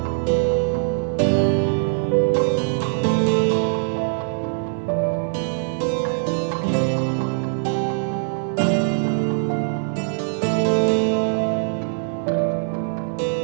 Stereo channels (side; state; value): left; silent; 64 dB below the other